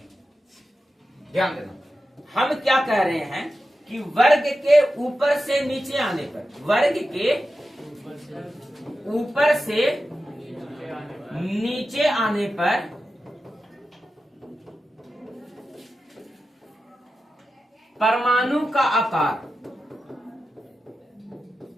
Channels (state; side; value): normal; both; correlation 0.92